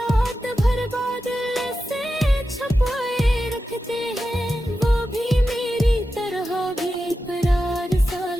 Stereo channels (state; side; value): normal; both; correlation 0.91